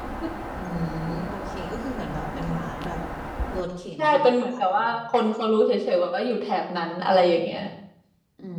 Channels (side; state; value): both; identical; correlation 1.00